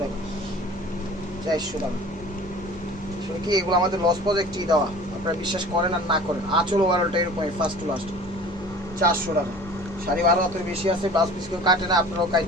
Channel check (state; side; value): normal; both; correlation 0.43